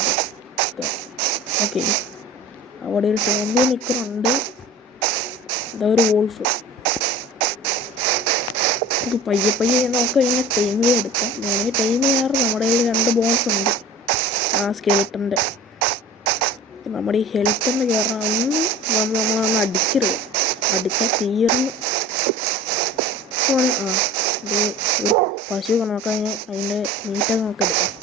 ഓക്കെ, അവിടെ ഒരു സോംബി നിൽക്കുന്നുണ്ട്. ഇതാ ഒരു വോൾഫ്. ഇത് പയ്യെ നമുക്ക് ഇങ്ങനെ ടൈം എടുക്കാം. ഞാൻ ടൈം ചെയ്യാറ് നമ്മുടെ കയ്യിൽ 2 ബോൺസ് ഉണ്ട് ആ സ്കെലിട്ടൻ്റെ. നമ്മുടെ ഈ ഹെൽത്തെന്ന് കയറാൻ നമ്മളൊന്ന് അടിക്കരുത്. അടിച്ചാൽ തീർന്ന് പശു നോക്കാൻ അതിൻ്റെ മീറ്റൊക്കെ നോക്കാം.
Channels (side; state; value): both; normal; correlation 0.40